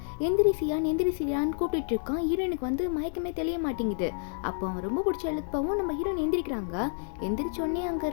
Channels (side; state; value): right; silent; 58 dB below the other